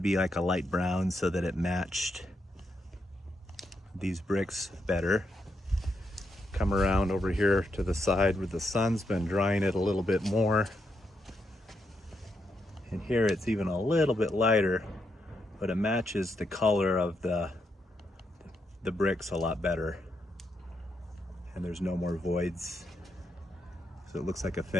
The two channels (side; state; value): both; normal; correlation 0.81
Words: like a light brown so that it matched these bricks better. Come around over here to the side where the sun's been drying it a little bit more. And here it's even a little bit lighter, but it matches the color of the bricks a lot better. And there's no more voids. So it looks like a